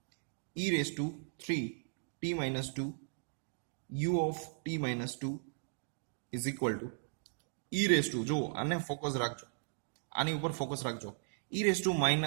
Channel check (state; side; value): silent; left; digital silence